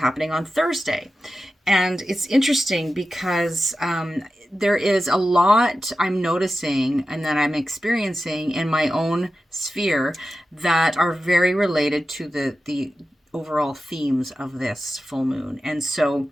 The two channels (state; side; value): normal; both; correlation 0.92